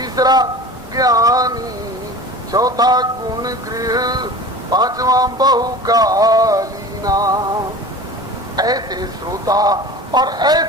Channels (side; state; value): both; normal; correlation 0.37